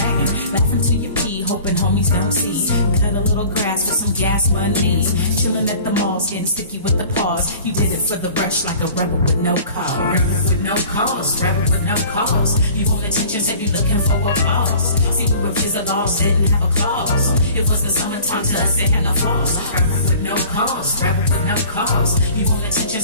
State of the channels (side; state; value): both; inverted; correlation -0.46